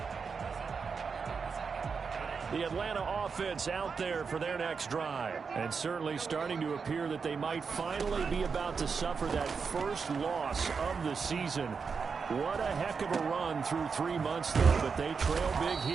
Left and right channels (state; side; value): quieter; left; 5.5 dB